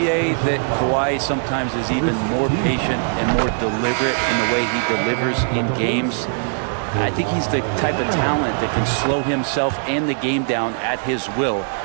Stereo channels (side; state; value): left; silent; digital silence